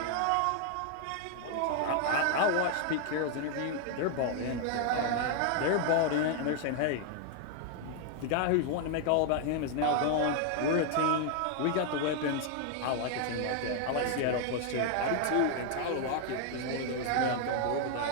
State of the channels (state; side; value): different; both; correlation 0.00